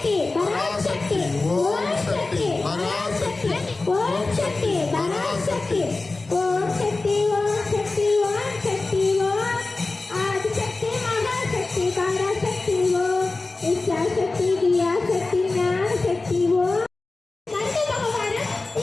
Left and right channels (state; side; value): quieter; right; 3.4 dB